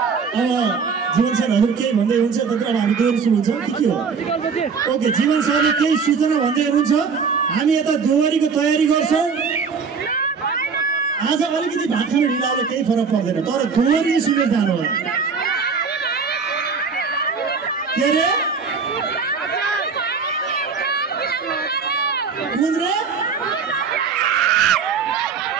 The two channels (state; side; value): quieter; left; 5.5 dB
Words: अब जीवन सर हजुर केही भन्दै हुनुहुन्छ? तर अब हामी दोहोरी सुरु हुन्छ कि के हो? ओके, जीवन सरले केही सूचना भन्दै हुनुहुन्छ। हामी यता दोहोरीको तयारी गर्छौँ। आज अलिकति भात खान ढिलाले केही फरक पर्दैन, तर दोहोरी सुनेर जानु होला। के अरे कुन रे?